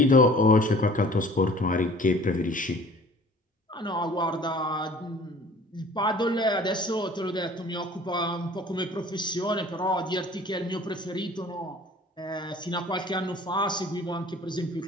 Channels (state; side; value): normal; both; correlation 0.49